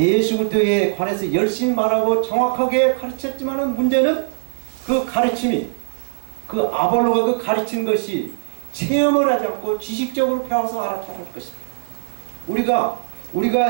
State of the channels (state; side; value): silent; left; digital silence